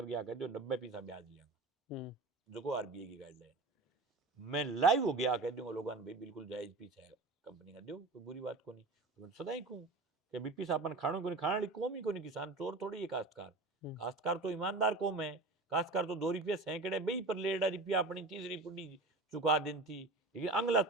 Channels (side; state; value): left; quieter; 3.3 dB